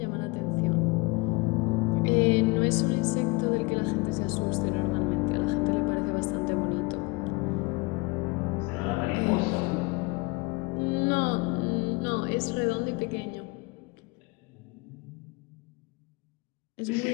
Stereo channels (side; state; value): right; quieter; 26.4 dB